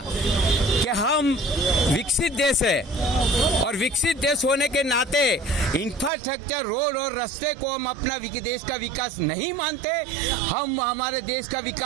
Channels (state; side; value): drops out; left; at 6.1 s